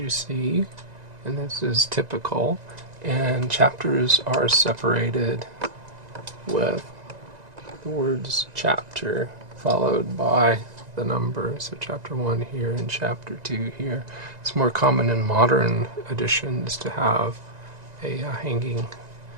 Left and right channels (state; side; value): late; left; 1.9 ms